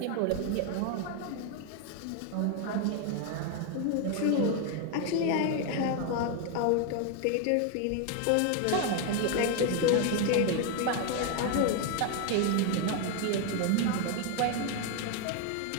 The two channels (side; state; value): both; different; correlation 0.01